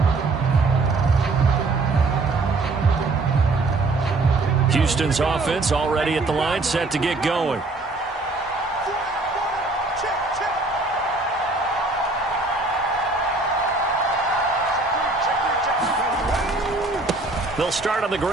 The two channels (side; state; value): left; quieter; 3.3 dB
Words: Houston's offense already at the line, set to get going. They'll start on the